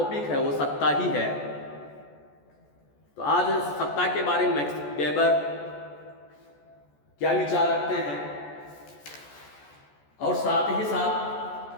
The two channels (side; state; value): right; late; 14 ms